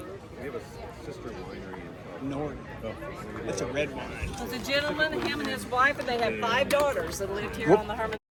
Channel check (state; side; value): identical; both; correlation 1.00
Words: We have a sister winery in Norton. That's a red wine. It was a gentleman, him and his wife, and they had 5 daughters that lived here on the Herman